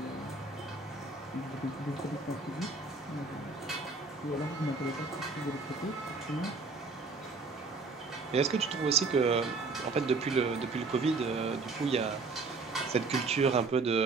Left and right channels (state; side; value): quieter; left; 4.0 dB